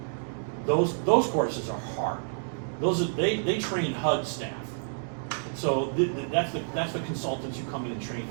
those courses are hard. They train HUD staff. So that's the consultants who come in and train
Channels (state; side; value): silent; left; digital silence